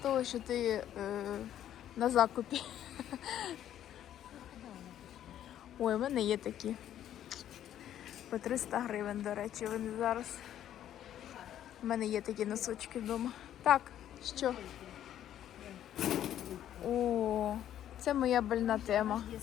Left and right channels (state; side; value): quieter; right; 11.1 dB